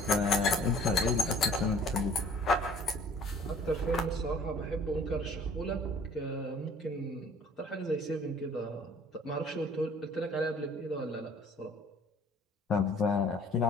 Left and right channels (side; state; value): both; normal; correlation 0.53